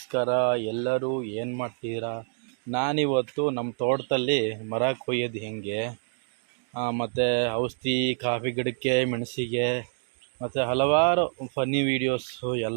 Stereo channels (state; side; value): silent; left; 60 dB below the other